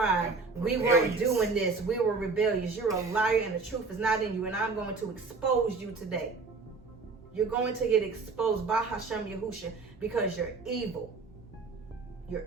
we weren't doing this, we were rebellious. You're a liar and the truth is not in you, and I'm going to expose you today. You're going to get exposed by Hashem Yahusha because you're evil. You're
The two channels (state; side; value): quieter; left; 4.2 dB